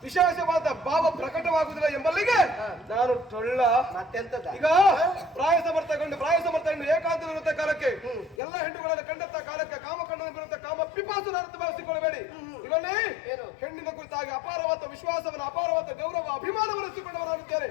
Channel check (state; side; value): drops out; right; at 8.3 s